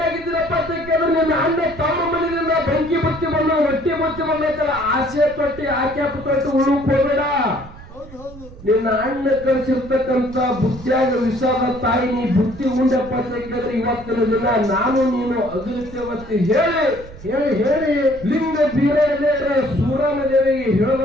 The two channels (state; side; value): noise; right; rumble, 17 dB below the sound